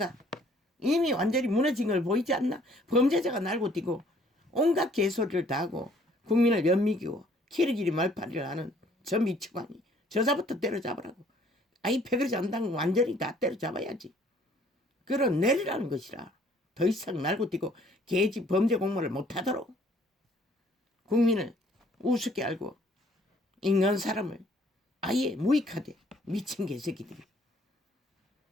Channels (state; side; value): normal; both; correlation 0.60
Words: 이미 완전히 무너진 걸 보이지 않나? 범죄자가 날고 뛰고 온갖 개소리를 다 하고 국민을 연미기고 키리키리 말파리를 하는 저 미치광이 저자부터 때려잡으라고. 아이 패거리 잔당 완전히 다 때려잡아야지. 그런 내리라는 것이라. 더 이상 날고 뛰고 개지 범죄 공모를 못하도록 국민을 우습게 알고 인간 사람을 아예 무익하되 미친 개새끼들이